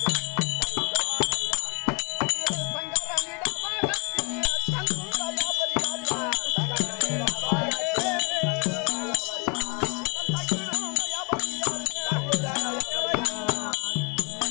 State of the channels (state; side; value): quieter; right; 34.4 dB